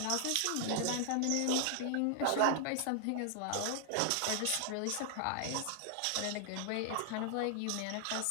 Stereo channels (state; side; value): different; both; correlation 0.00